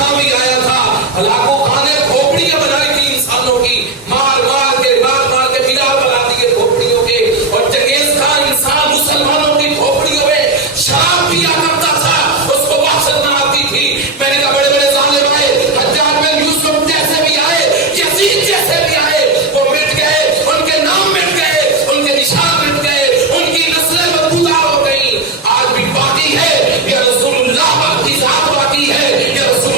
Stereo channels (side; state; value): left; quieter; 3.3 dB